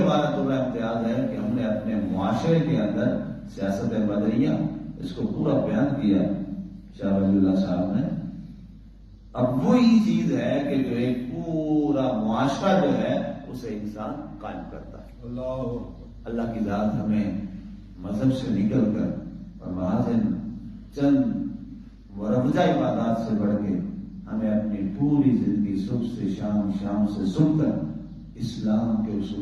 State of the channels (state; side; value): identical; both; correlation 1.00